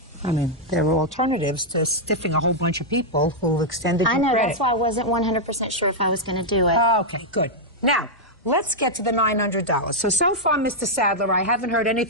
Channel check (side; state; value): both; normal; correlation -0.04